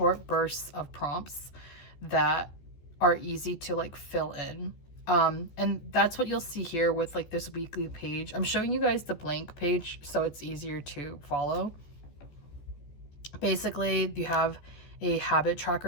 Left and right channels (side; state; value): right; late; 14 ms